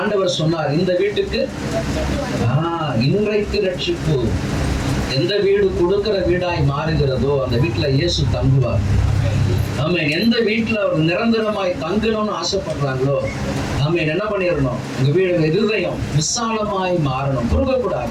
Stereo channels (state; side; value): identical; both; correlation 1.00